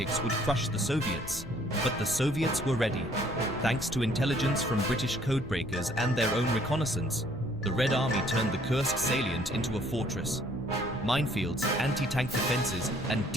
would crush the Soviets. But the Soviets were ready. Thanks to intelligence from British codebreakers and their own reconnaissance, the Red Army turned the Kursk salient into a fortress. Minefields, anti-tank defenses, and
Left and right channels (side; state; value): left; noise; rumble, 14 dB below the sound